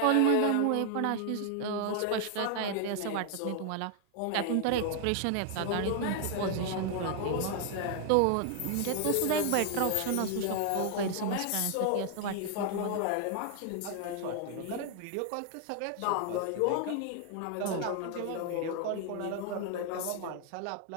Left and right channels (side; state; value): both; different; correlation 0.00